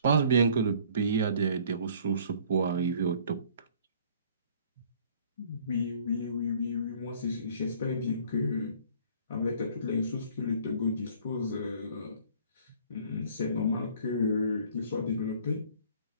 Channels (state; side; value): inverted; both; correlation -0.54